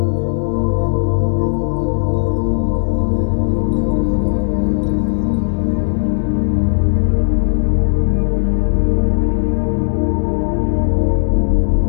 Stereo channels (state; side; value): silent; right; 59 dB below the other